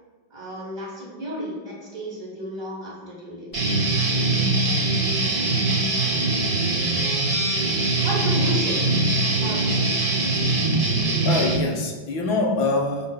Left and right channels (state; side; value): late; right; 6.0 ms